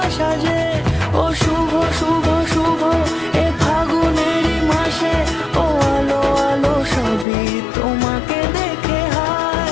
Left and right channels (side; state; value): right; drops out; at 7.2 s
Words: যে ও শুভ শুভ